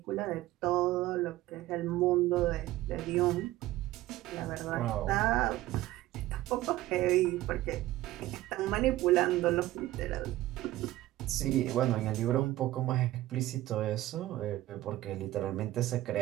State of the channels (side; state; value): left; quieter; 16.0 dB